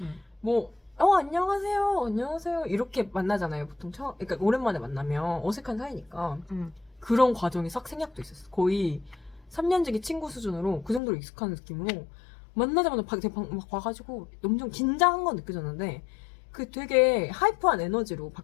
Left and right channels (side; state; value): right; drops out; at 11.0 s